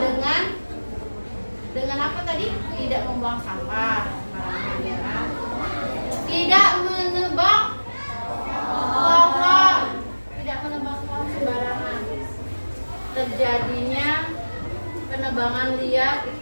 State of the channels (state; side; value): inverted; both; correlation -1.00